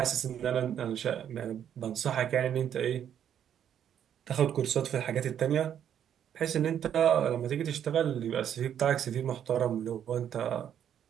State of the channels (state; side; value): quieter; left; 9.5 dB